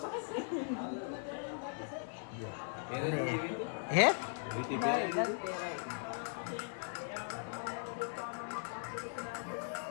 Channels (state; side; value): silent; right; 52 dB below the other